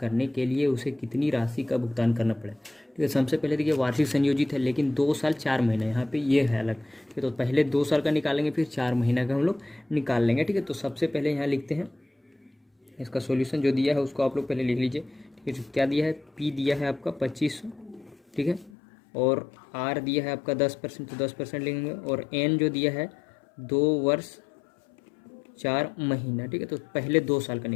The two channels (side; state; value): right; drops out; at 18.7 s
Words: के लिए उसे कितनी राशि का भुगतान करना पड़े, ठीक है। सबसे पहले देखिए वार्षिक संयोजित है, लेकिन 2 साल 4 महीना यहाँ पे ये है अलग, ठीक है। तो पहले 2 साल का निकालेंगे, फिर 4 महीना का हम लोग निकाल लेंगे, ठीक है। तो सबसे पहले यहाँ लिखते हैं इसका सॉल्यूशन, जो दिया है उसको आप लोग पहले लिख लीजिए, ठीक है। क्या दिया है, पी दिया है आपका 2500, ठीक है, और आर दिया है आपका 10%, तो 10% लेंगे, और एन जो दिया है 2 वर्ष 4 महीना, ठीक है। तो पहले 2 साल का